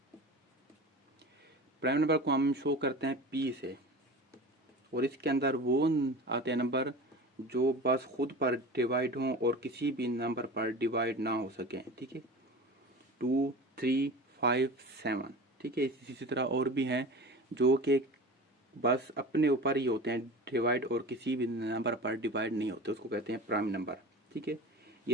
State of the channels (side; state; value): both; normal; correlation 0.34